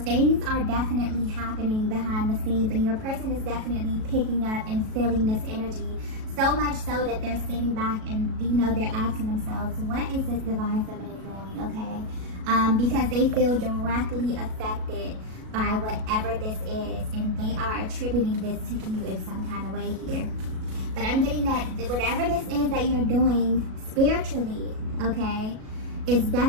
are definitely happening behind the scenes, and your person is definitely picking up and feeling this energy, so much so that they're sitting back and they're asking themselves, what is this Divine Feminine doing? Okay, because they feel directly affected by whatever this is, and they are attributing this to you in some kind of way here. But I'm getting that whatever this is that you're doing spiritually, okay, is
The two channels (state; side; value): late; left; 37 ms